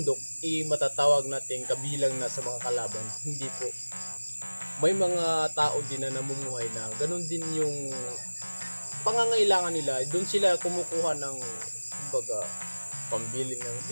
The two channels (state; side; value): inverted; both; correlation -1.00